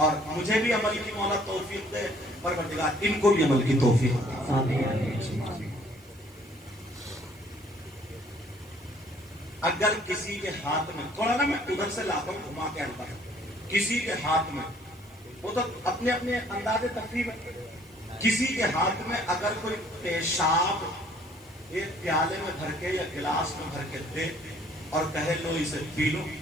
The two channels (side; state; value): right; noise; hiss, 30 dB below the sound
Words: مجھے بھی عمل کی مولا توفیق دے، پروردگار ان کو بھی عمل کی توفیق دے. اگر کسی کے ہاتھ میں، تھوڑا نا میں ادھر سے لاتا ہوں گھما کے آتا ہوں، کسی کے ہاتھ میں، وہ تو اپنے اپنے انداز تفریح میں، کسی کے ہاتھ میں اگر کوئی پیشاب ایک پیالے میں بھر کے یا گلاس میں بھر کے دے اور کہے لو اسے پی لو،